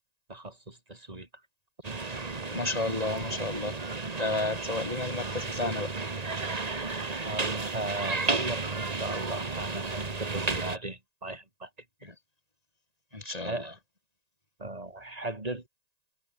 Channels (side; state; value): left; late; 1.9 ms